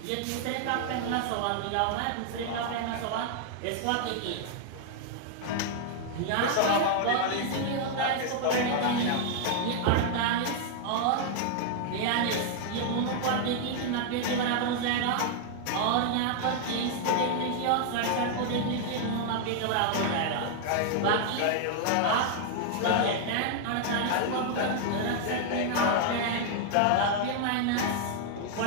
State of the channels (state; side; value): different; both; correlation 0.00